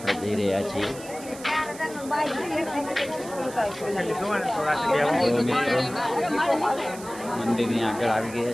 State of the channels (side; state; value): right; noise; hiss, 16 dB below the sound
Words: જઈ રહ્યા છીએ. મંદિરની આગળ આવી